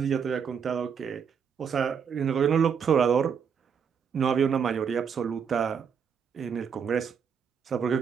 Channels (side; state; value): left; quieter; 6.9 dB